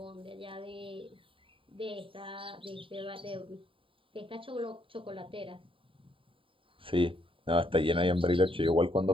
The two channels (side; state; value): left; late; 0.25 ms